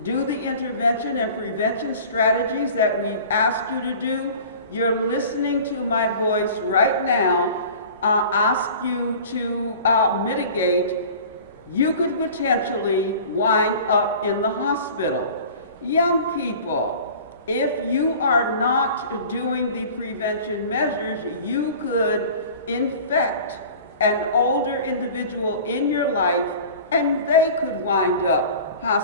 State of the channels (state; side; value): inverted; both; correlation -0.42